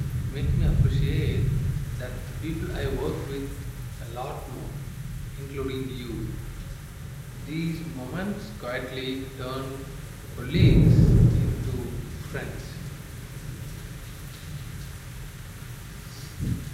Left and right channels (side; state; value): both; identical; correlation 1.00